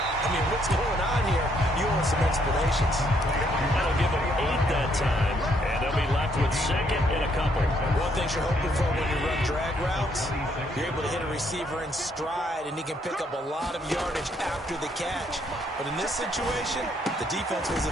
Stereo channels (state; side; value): normal; both; correlation 0.70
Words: mean, what's going on here? You want some explanations. That'll give him 8 that time, and they'll be left with 2nd and a couple. One thing you're hoping for when you run drag routes, you're able to hit a receiver in stride, and he can pick up a lot of yardage after the catch. But in this situation, the defense was